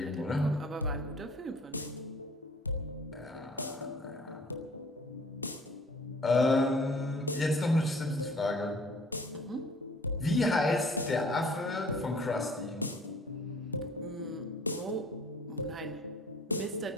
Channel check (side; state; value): both; normal; correlation 0.52